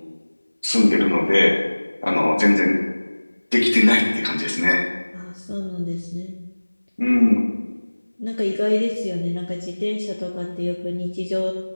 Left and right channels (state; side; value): inverted; both; correlation -1.00